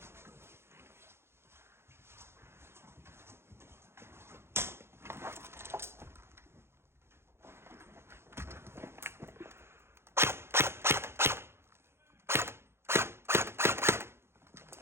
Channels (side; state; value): left; late; 0.12 ms